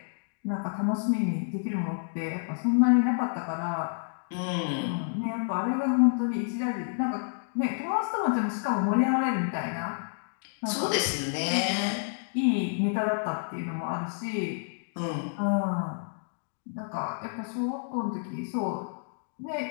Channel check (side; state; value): right; silent; digital silence